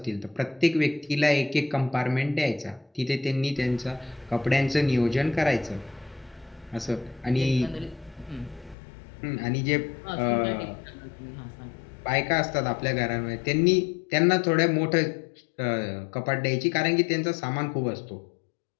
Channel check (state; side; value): drops out; right; at 8.8 s